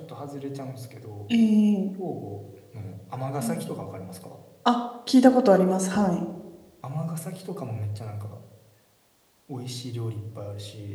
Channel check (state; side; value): identical; both; correlation 1.00